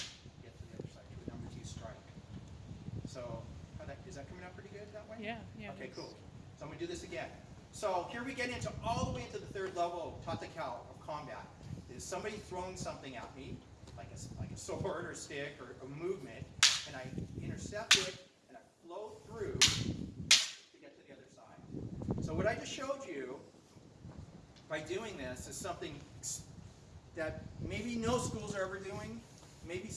Get to the other side, to a number 2 strike. So is that coming out pretty good that way? Yeah. Okay, cool. So I'm going to do this again. So here we get into all the way into the 3rd level of Tatakao of combat. Is somebody throwing something at me, like a sword or stick or a movement, and I intercept it and I flow through to get to the other side. So what I just showed you by doing this is something that maybe no schools are ever doing. Maybe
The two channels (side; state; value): both; identical; correlation 1.00